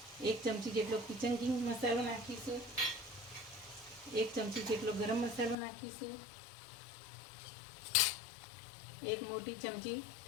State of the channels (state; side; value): drops out; right; at 5.6 s